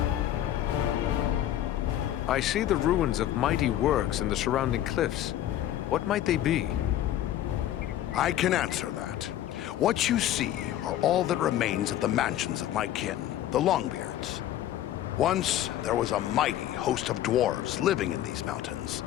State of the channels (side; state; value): right; quieter; 12.4 dB